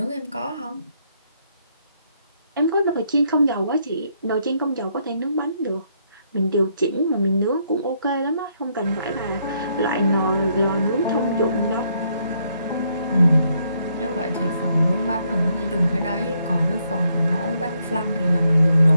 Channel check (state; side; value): inverted; both; correlation -0.74